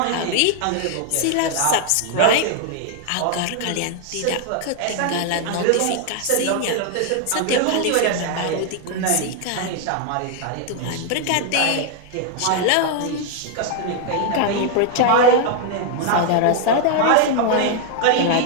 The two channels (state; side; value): different; both; correlation 0.00